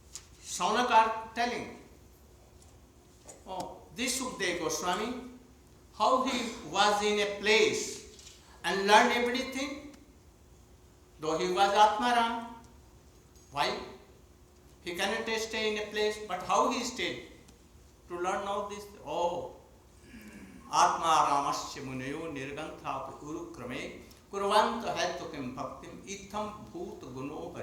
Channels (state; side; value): identical; both; correlation 1.00